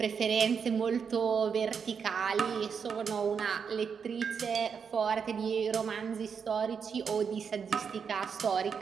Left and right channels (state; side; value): quieter; left; 6.4 dB